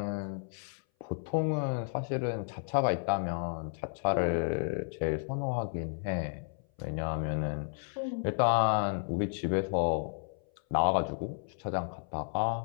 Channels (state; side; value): silent; right; 56 dB below the other